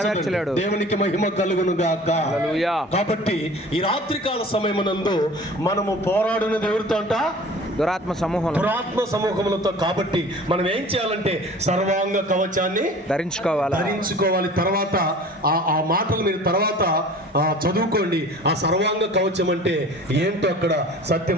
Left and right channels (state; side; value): normal; both; correlation 0.43